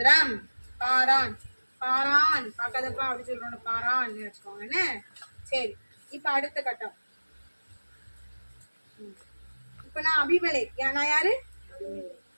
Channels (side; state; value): both; inverted; correlation -1.00